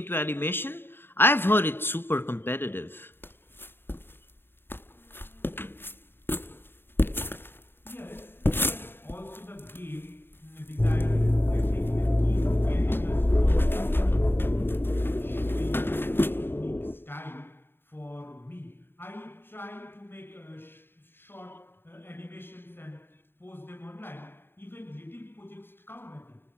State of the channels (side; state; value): right; late; 0.10 ms